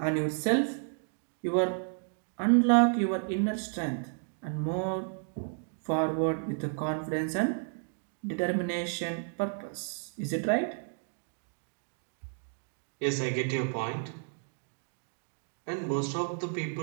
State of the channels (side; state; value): left; silent; 56 dB below the other